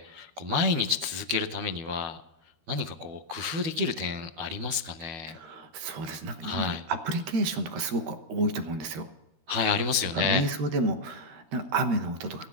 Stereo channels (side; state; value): left; late; 13 ms